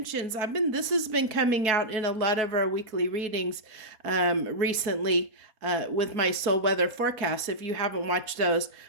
This has been coming out in a lot of our weekly readings recently with my soul weather forecast, if you haven't watched those.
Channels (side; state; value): left; late; 4.3 ms